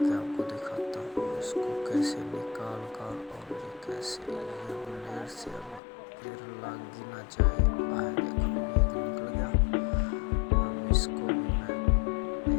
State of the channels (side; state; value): right; drops out; at 5.8 s